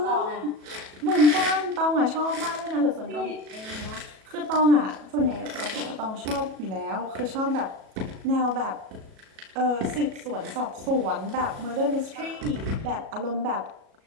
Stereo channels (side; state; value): left; late; 37 ms